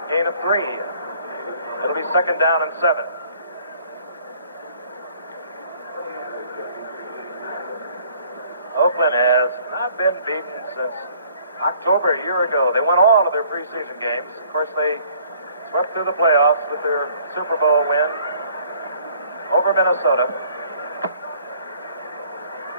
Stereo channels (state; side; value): inverted; both; correlation -0.58